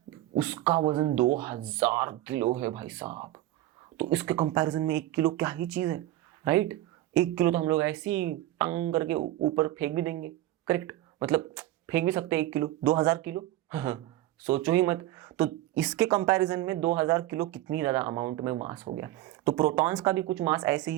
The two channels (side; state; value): left; quieter; 15.2 dB